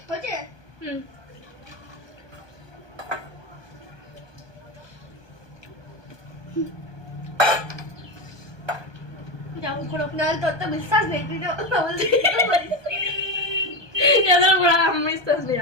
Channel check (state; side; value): late; left; 1.2 ms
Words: হচ্ছে যাও করো। নাহলে তোর তো বিশ্বাস নেই, তুই তো বলছিস। এদের উপর আর আমার বিশ্বাস নেই